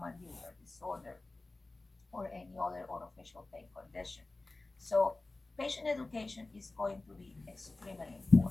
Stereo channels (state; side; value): quieter; right; 3.1 dB